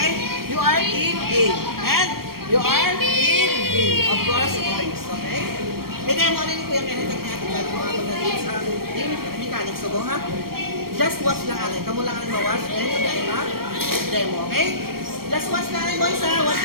You are Team A. And you are Team B. Of course, boys. Okay? I-demo na ni Kuya Kenneth at ni Ate Johnson mga pagdating sa yung mechanics. So, ha? Just watch lang ate. Kamu lang ang ma-watch. And kami ang demo. Okay? Just watch lang rin, boys, ha? Watch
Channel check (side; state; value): left; late; 0.94 ms